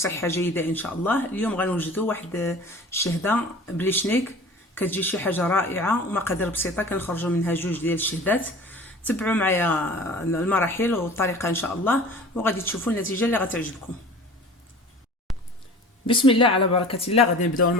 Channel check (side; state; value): both; normal; correlation 0.41